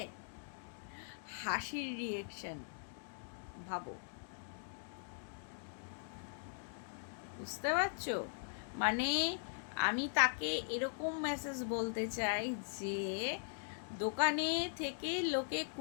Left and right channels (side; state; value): right; silent; digital silence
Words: হাসির রিয়াকশন ভাবো, বুঝতে পারছো? মানে আমি তাকে এরকম মেসেজ বলতে চাই যে দোকানে থেকে লোকে